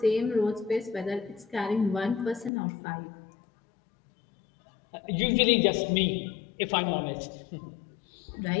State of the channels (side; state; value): right; drops out; at 2.5 s